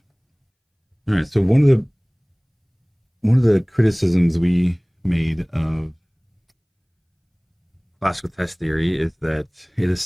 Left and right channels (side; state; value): both; identical; correlation 1.00